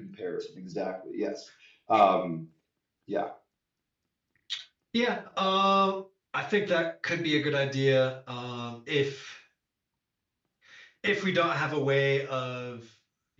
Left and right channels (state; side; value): identical; both; correlation 1.00